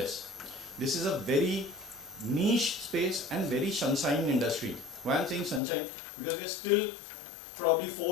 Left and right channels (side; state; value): right; drops out; at 5.6 s